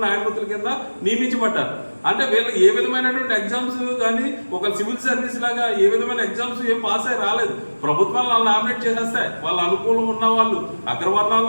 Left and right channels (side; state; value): both; inverted; correlation -1.00